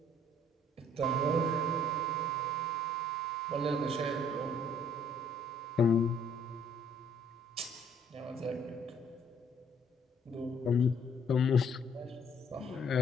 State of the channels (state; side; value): normal; both; correlation 0.61